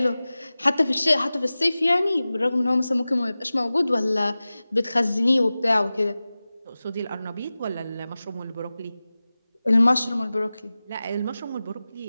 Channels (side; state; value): both; inverted; correlation -0.97